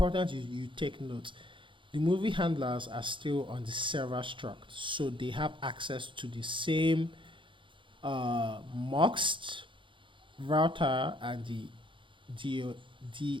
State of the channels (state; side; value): late; left; 0.24 ms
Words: you take note. The movie handlers are still on the server struct, so they have access to the same muxt router and the